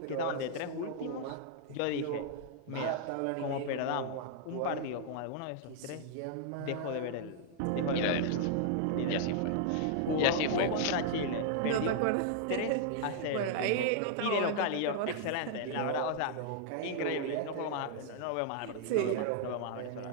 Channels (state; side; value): different; both; correlation -0.01